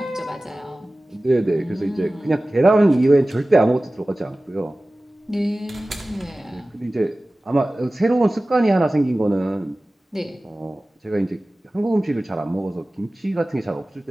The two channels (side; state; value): both; normal; correlation 0.97